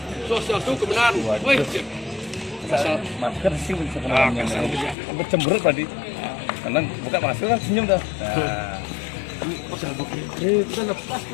Sosial itu kebenaran. Woi, masker sih sebenarnya. Sampai cemberut tadi. Karena buka masker kan senyum dah. Kita lepas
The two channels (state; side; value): drops out; right; at 5.0 s